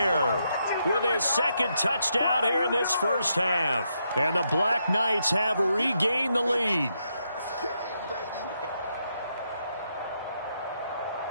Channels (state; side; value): inverted; both; correlation -0.80